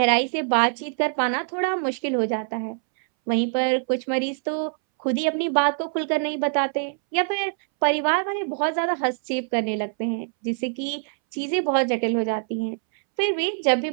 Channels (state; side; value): silent; left; 63 dB below the other